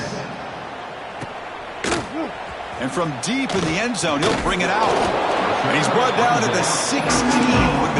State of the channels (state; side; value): identical; both; correlation 1.00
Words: And from deep in the end zone, he'll bring it out. And he's brought down to the 16. Would have